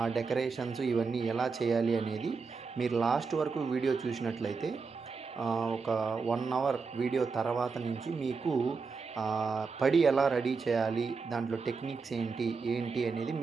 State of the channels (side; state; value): left; quieter; 4.9 dB